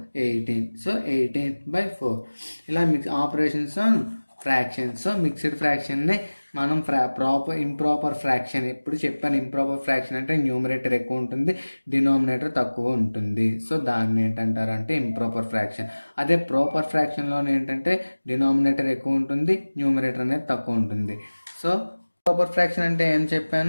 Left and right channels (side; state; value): both; inverted; correlation -1.00